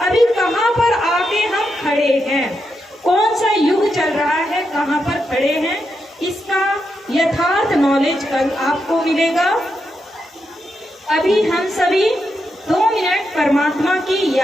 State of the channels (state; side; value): normal; both; correlation 0.84